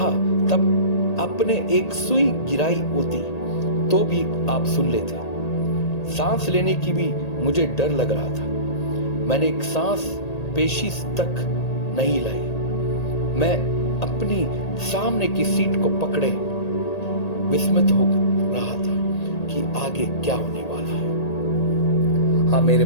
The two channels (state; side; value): late; right; 1.8 ms